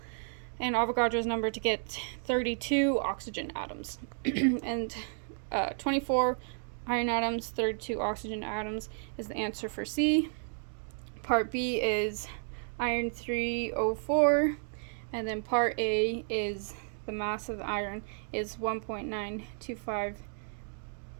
and Avogadro's number to get 32 oxygen atoms. And 24 iron atoms, 32 oxygen atoms is the answer for C. Part B is iron 304, and then part A is the mass of iron is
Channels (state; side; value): silent; left; 56 dB below the other